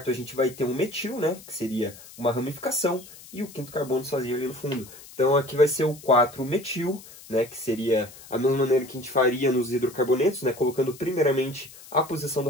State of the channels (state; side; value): noise; left; hiss, 19 dB below the sound